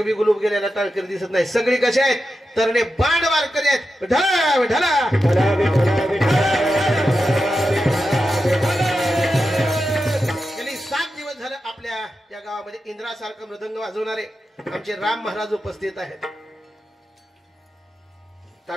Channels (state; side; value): normal; both; correlation 0.90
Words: बी गुलूब गेलेला टाळकरी दिसत नाही. सगळी कसे आहेत तरणे बाण वारकरी आहेत. ढला विठला गेली 7 दिवस झालं आपल्या या गावामध्ये इंद्रासारखं मृदंग वाजवणारे आमचे राम महाराज उपस्थित आहेत.